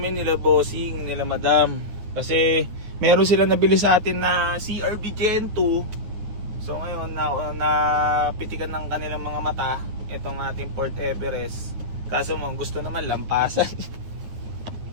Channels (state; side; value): late; left; 9.4 ms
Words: nila bossing, nila madam. Kasi meron sila nabili sa atin na CRV Gen 2. So ngayon napitikan ng kanilang mga mata itong ating Port Everest. Kaso mo gusto naman lampasan.